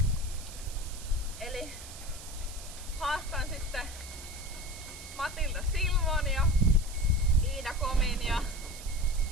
Eli haastan sitten Matilda Silvon ja Iida Komin ja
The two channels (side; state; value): right; noise; hiss, 14 dB below the sound